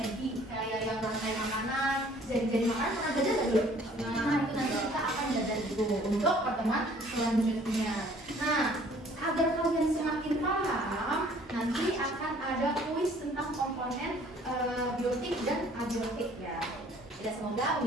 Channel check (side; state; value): both; normal; correlation 0.56